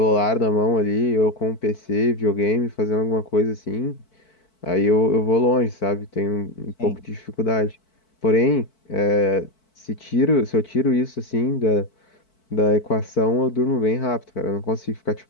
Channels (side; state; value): right; late; 4.5 ms